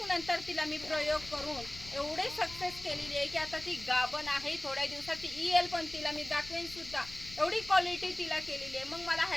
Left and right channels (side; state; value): left; noise; rumble, 16 dB below the sound